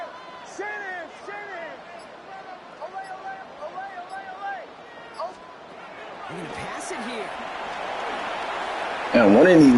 They're going to pass it here. And one of these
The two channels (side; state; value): both; identical; correlation 1.00